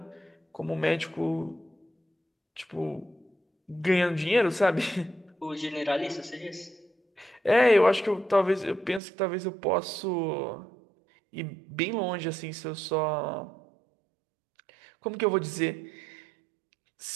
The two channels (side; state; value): left; drops out; at 9.0 s